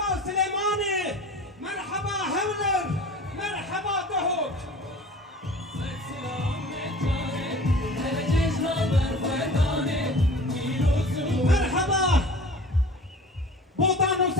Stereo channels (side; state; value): both; normal; correlation 0.41